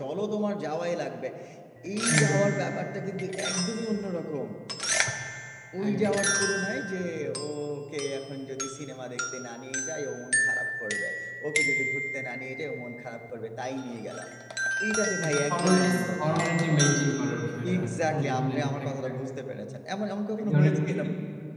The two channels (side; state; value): both; identical; correlation 1.00